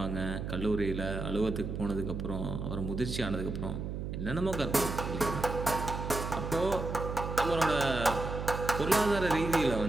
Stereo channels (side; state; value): right; noise; hum, 5 dB below the sound